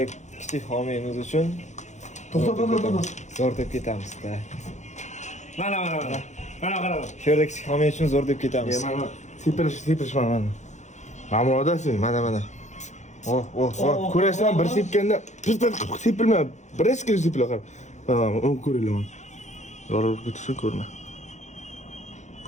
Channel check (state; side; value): late; right; 0.34 ms